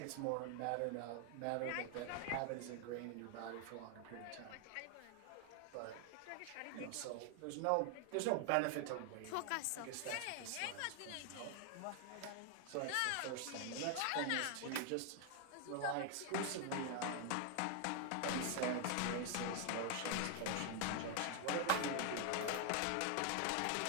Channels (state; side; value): different; both; correlation 0.00